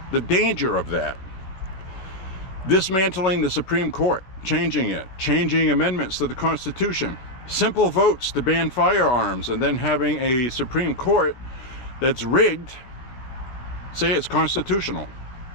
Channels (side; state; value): right; late; 16 ms